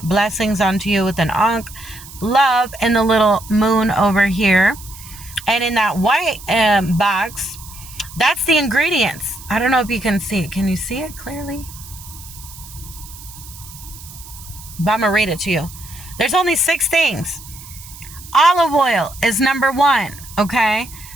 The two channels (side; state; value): right; noise; hiss, 17 dB below the sound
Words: Blessings unto you with an ankh. Love in the little moon over here. And in that white box, that's the ingredients. I don't know if you can see it. Can you see it clearly? But I'm going to read it to you. There's only 6 things. Olive oil is number 1. Okay,